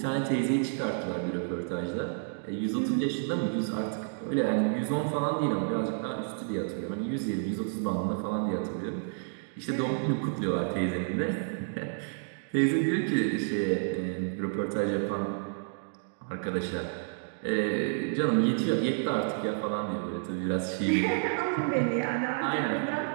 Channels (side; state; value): left; silent; digital silence